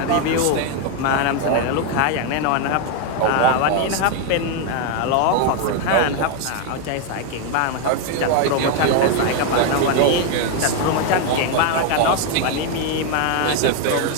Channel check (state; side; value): different; both; correlation 0.01